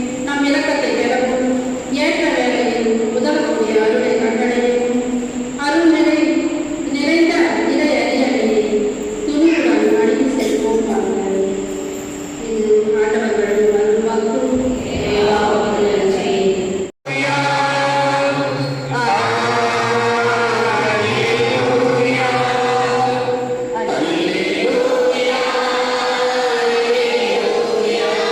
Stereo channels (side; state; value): both; identical; correlation 1.00